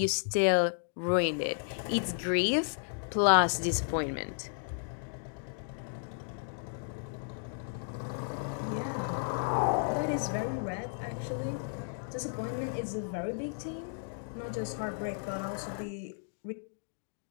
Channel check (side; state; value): right; silent; digital silence